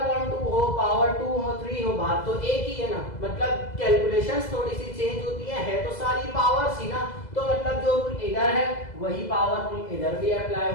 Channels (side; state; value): right; late; 2.0 ms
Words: हो, पावर 2 हो, 3 हो, बात तो एक ही है ना। मतलब कैलकुलेशंस थोड़ी सी चेंज होती है तो सारी पावर्स ही ना। तो मतलब जो रूल इधर है वही पावर रूल इधर भी अप्लाई